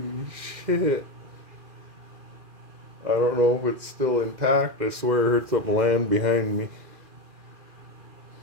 shit. I don't know if it's still intact. I swear I heard something land behind me.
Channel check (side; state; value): left; late; 2.4 ms